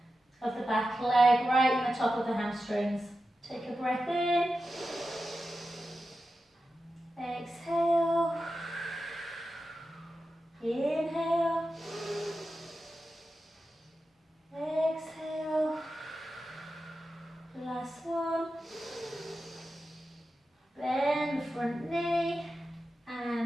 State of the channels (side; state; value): both; normal; correlation 0.91